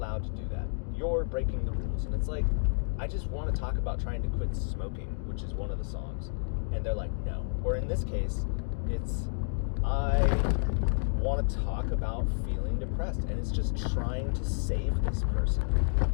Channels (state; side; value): silent; right; digital silence